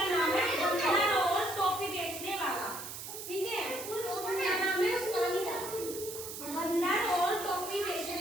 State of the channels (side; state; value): right; noise; hiss, 9 dB below the sound